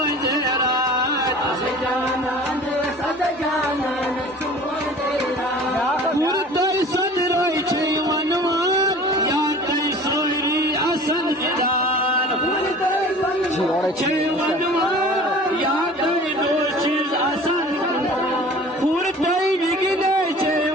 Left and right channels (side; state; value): both; normal; correlation 0.44